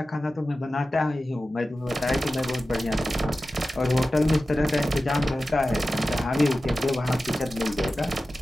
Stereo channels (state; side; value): normal; both; correlation 0.94